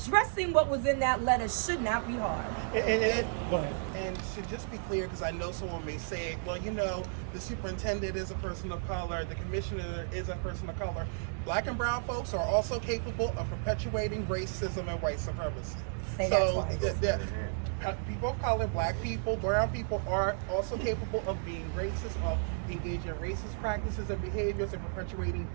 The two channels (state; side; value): silent; left; 56 dB below the other